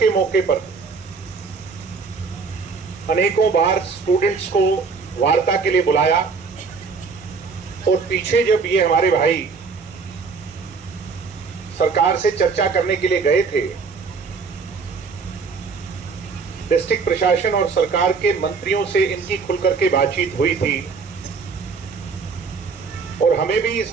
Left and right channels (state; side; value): quieter; left; 4.9 dB